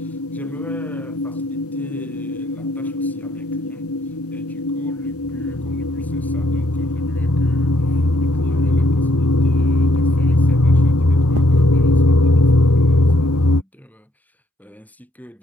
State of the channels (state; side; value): normal; both; correlation 0.70